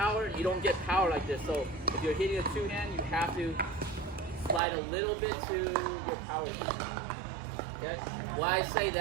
you don't get power like this. So if you're hitting a two-hand, you have to slide a little bit to your power zone. Okay? Why I say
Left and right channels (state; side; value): drops out; left; at 4.6 s